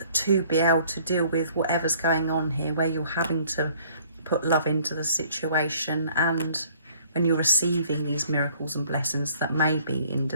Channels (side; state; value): both; inverted; correlation -0.58